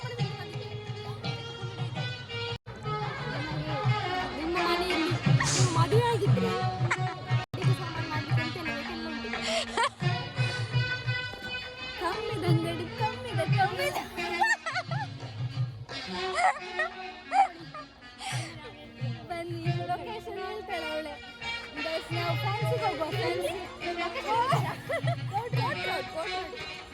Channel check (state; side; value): identical; both; correlation 1.00